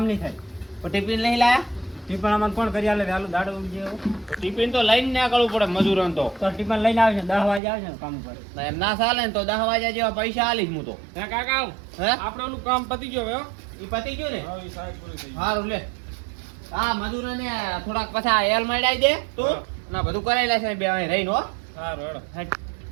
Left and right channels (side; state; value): left; drops out; at 7.6 s